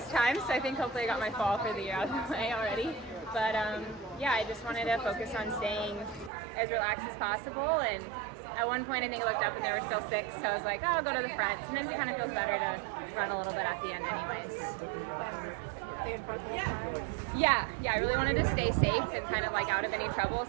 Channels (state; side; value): drops out; left; at 6.3 s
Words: time, so I think hopefully I got my fall for the year out of the way already. But I just wanted to focus on staying as relaxed as possible. And at one point I think I looked up and there were still 6, so I was like, oh, I'll go to the front. Sometimes it kind of feels better to run a little bit at the end anyways. Yeah, I really wanted to stay safe and kind of like out of any trouble,